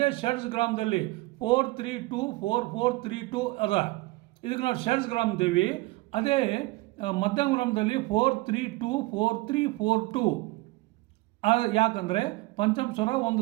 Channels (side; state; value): left; quieter; 21.6 dB